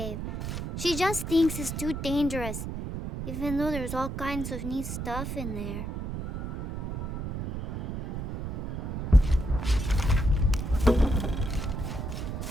She just thinks it's too dangerous, even though there's all kinds of neat stuff in there.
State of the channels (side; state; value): right; noise; rumble, 5 dB below the sound